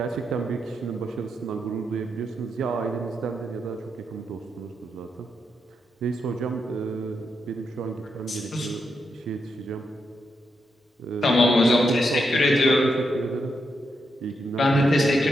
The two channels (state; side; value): normal; both; correlation 0.83